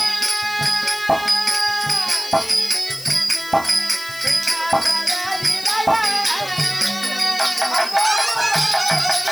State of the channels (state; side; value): noise; left; hiss, 15 dB below the sound